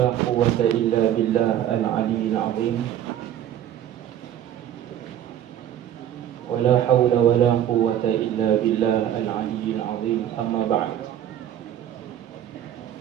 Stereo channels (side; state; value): left; quieter; 10.8 dB